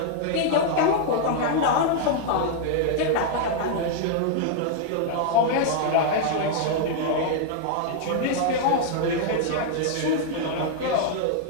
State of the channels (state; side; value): different; both; correlation 0.00